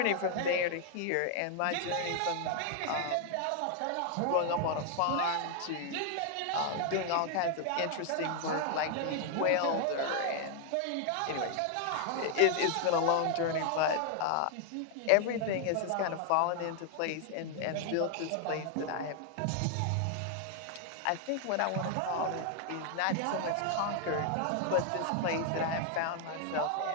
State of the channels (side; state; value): both; different; correlation 0.00